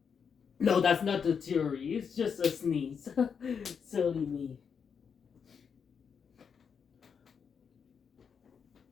no, that's not the theory. It's just a sneeze. Silly me.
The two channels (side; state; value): right; quieter; 6.6 dB